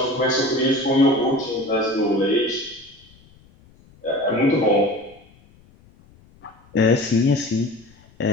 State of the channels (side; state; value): left; noise; rumble, 28 dB below the sound